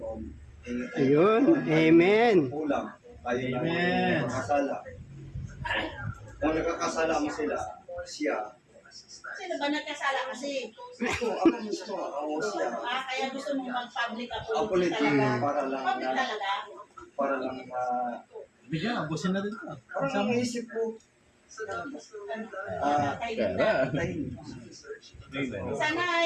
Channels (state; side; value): identical; both; correlation 1.00